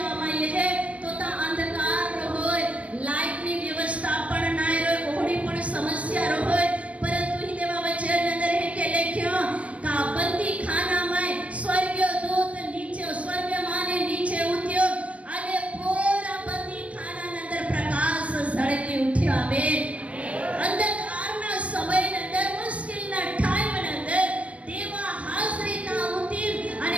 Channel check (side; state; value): left; late; 0.064 ms